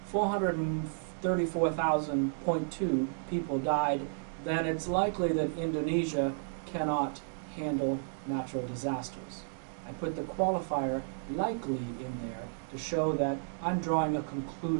434,000.2 people died, then it's likely that Indonesia cannot handle natural disasters. I put the qualifier likely in there to show that I'm drawing a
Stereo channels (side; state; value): left; silent; digital silence